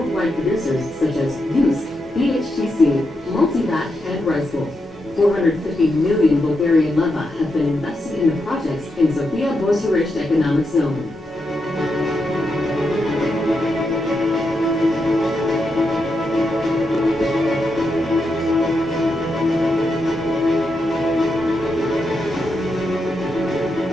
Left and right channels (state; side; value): normal; both; correlation 0.84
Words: producers such as Yus, BHTC, Multivat, and Rice-Bowl. 450 million Bulgarian leva have been invested in the projects in Sofia Bucharest Economic Zone.